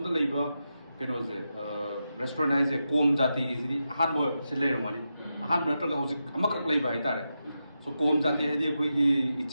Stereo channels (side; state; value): both; inverted; correlation -0.88